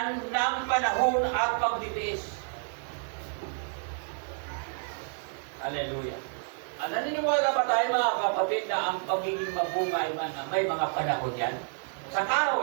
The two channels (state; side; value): silent; left; 58 dB below the other